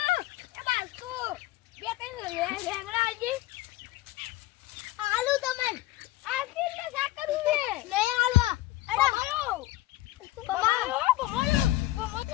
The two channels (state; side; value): quieter; right; 17.0 dB